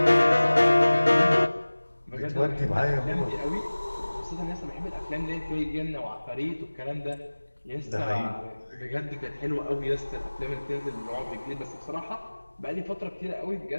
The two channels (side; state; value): both; inverted; correlation -1.00